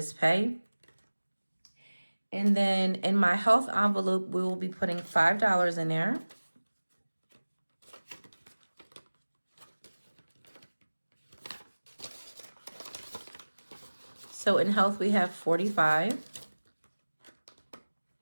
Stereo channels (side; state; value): both; inverted; correlation -1.00